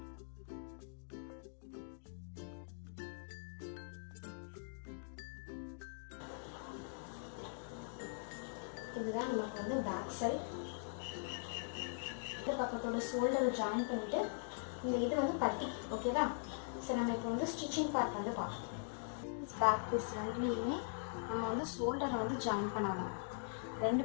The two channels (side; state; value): right; silent; digital silence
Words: இதுதான் நமக்கு வந்து பேக் சைடு. இந்த பக்கத்தோட ஷோல்டரை ஜாயின் பண்ணிவிட்டு இந்த இது வந்து பட்டி. ஓகேவா? சரி, நம்ம இப்போ வந்து ஸ்டிச்சிங் பார்ட் வந்து பார்க்கலாம். பேக் பீஸ் ரெண்டுலேயுமே நம்ம வந்து ஷோல்டரை வந்து ஜாயின் பண்ணணும். 2